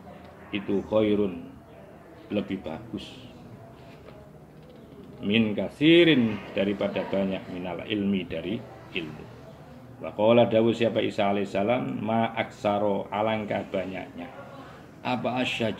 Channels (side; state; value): both; identical; correlation 1.00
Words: itu khairun lebih bagus min kasirin daripada banyak minal ilmi dari ilmu. Wa qala dawu siapa Isa alaihissalam ma aksaro alangkah banyaknya apa